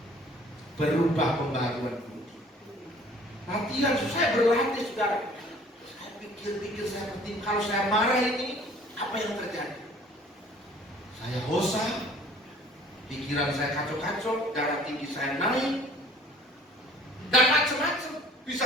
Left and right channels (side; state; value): both; normal; correlation 0.52